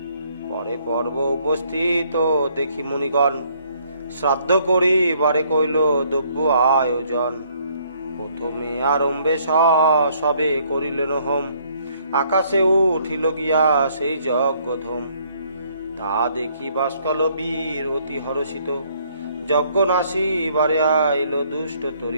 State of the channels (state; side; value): inverted; both; correlation -0.66